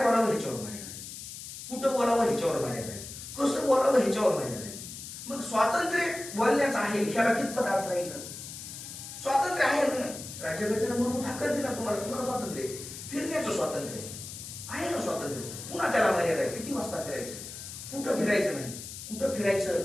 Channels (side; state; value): left; noise; hiss, 11 dB below the sound